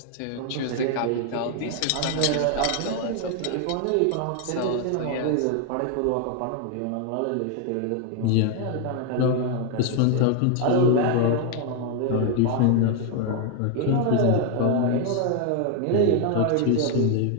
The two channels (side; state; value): both; different; correlation 0.01